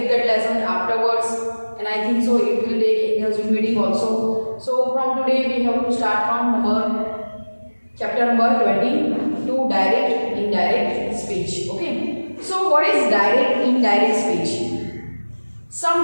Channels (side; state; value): both; inverted; correlation -1.00